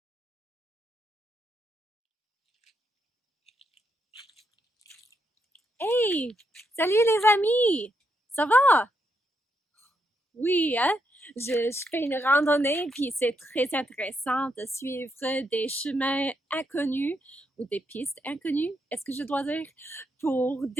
Hey! Salut les amis! Ça va? Oui, hein? Je fais une randonnée, puis c'est très intéressant de suivre des chemins inconnus ou des pistes inconnues, est-ce que je dois dire, pour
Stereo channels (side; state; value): both; normal; correlation 0.80